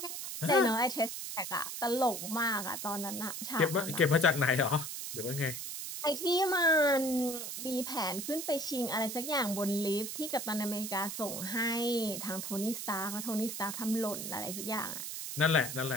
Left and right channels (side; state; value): right; noise; hiss, 6 dB below the sound